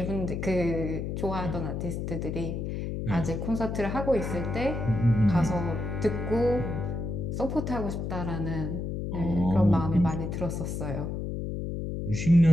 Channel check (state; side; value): noise; left; hum, 3 dB below the sound